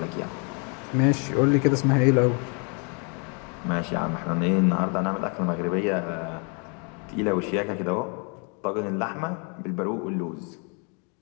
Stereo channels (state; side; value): quieter; right; 36.2 dB